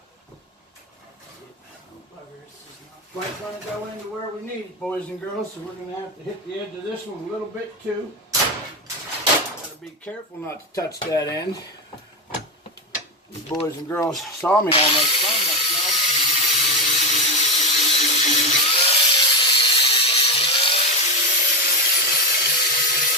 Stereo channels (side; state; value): both; normal; correlation 0.12